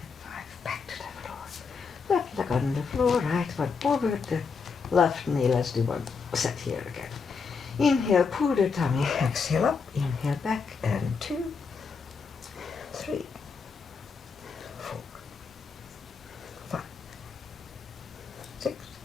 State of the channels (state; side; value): quieter; right; 5.2 dB